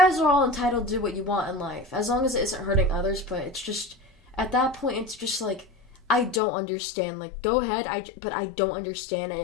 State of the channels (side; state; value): right; drops out; at 6.4 s